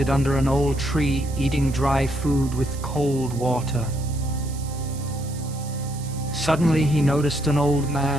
under an old tree, eating dry food with cold water. Suddenly he noticed an old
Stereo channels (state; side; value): noise; right; hiss, 17 dB below the sound